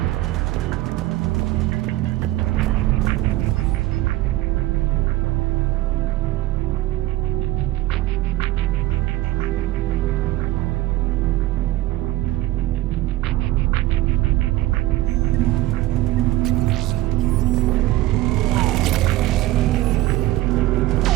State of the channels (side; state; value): left; quieter; 16.6 dB